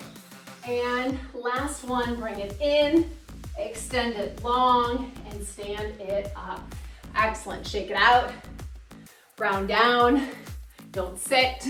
And last one, bring it in, extend it long, and stand it up. Excellent. Shake it out. Round down. Don't sit.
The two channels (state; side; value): identical; both; correlation 1.00